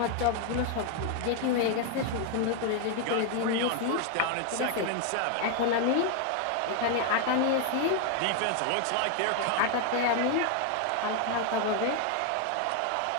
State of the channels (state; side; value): different; both; correlation 0.00